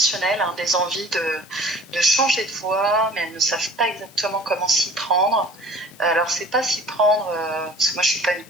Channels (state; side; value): noise; left; hiss, 25 dB below the sound